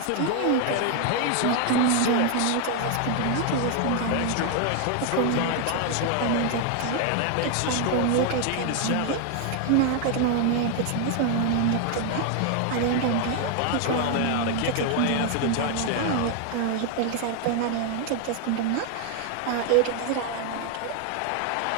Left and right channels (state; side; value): different; both; correlation 0.00